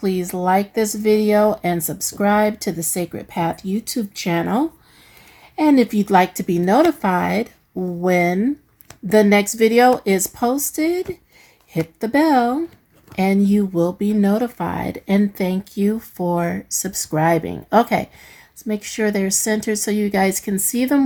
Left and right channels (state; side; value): identical; both; correlation 1.00